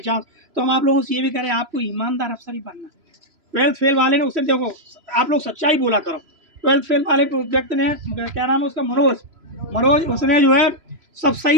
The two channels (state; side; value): late; left; 3.0 ms